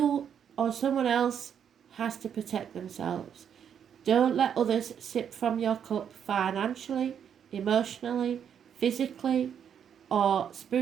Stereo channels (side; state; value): left; quieter; 8.3 dB